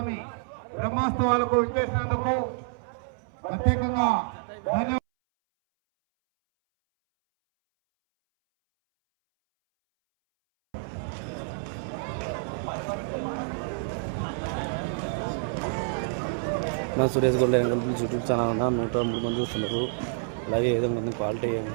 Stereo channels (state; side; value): silent; left; 59 dB below the other